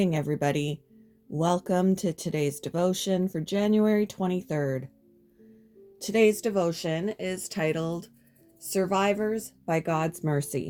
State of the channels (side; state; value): both; identical; correlation 1.00